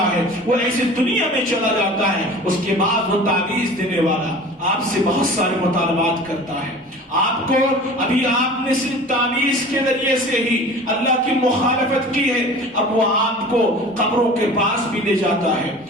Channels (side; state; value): both; normal; correlation 0.40